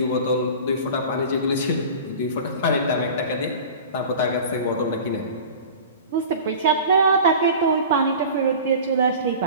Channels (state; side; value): inverted; both; correlation -0.37